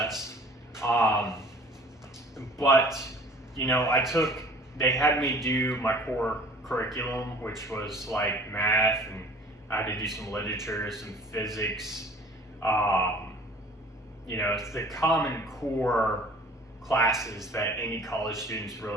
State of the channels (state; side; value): normal; both; correlation 0.49